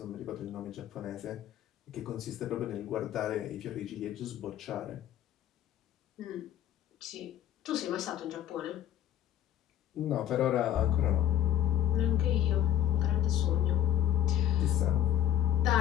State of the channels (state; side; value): quieter; right; 11.4 dB